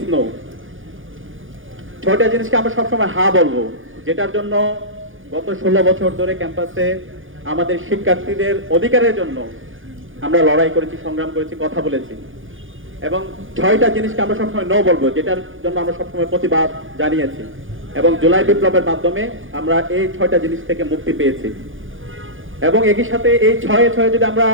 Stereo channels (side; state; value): left; late; 0.58 ms